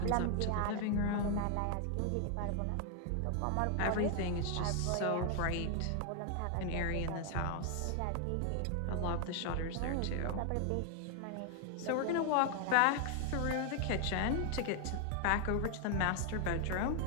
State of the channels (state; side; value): different; both; correlation 0.00